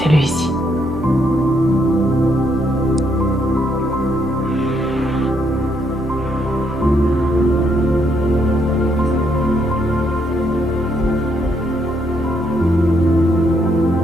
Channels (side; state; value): both; normal; correlation 0.73